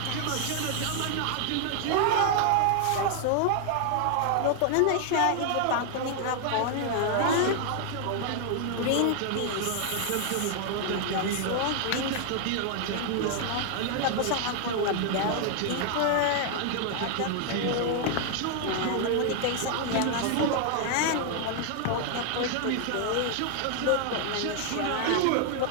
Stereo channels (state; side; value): different; both; correlation 0.00